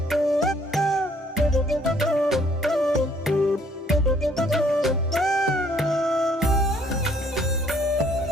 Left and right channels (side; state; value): both; normal; correlation 0.62